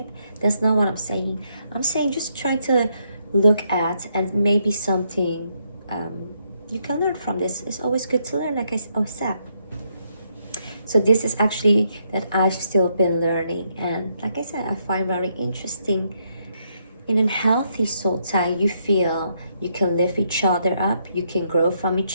That's not what I'm saying. I'm saying just trying to look at, and maybe something you can learn from this. It's always good to learn, like I said. So this is actually that I've still been learning, and like I said, I find very interesting. In a healthy soul tie, you feel you can lift each other up, you can grow from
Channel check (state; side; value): inverted; both; correlation -0.76